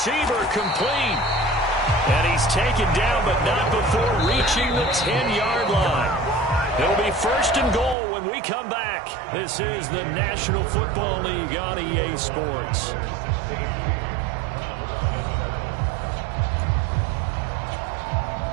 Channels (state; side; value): drops out; left; at 8.0 s